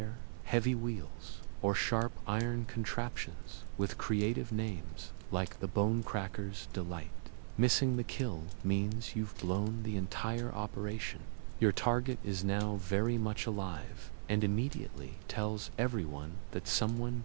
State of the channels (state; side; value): silent; left; 53 dB below the other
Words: heavy wheels, or sharp iron contraptions with creative names like the Bone Cracker's Delight. Missing the kill means you've blown the entire operation. Your target is now very much alive and immediately tells everyone that someone